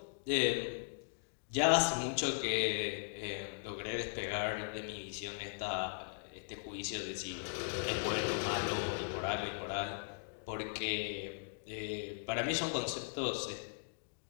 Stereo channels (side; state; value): right; silent; digital silence